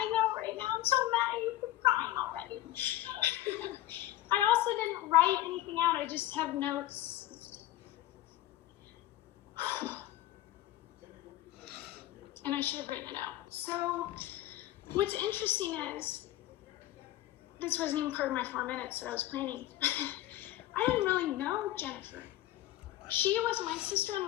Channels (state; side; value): quieter; right; 14.7 dB